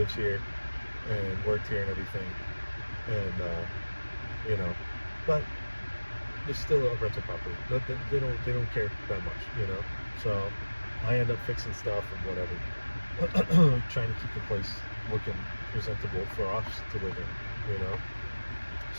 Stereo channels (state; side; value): inverted; both; correlation -1.00